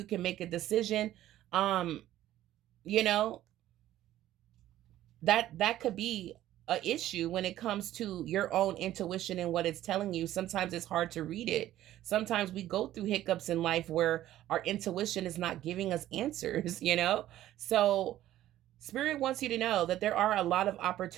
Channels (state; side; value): quieter; left; 13.6 dB